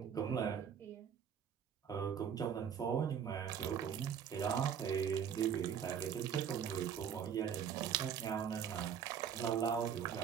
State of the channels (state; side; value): quieter; left; 8.0 dB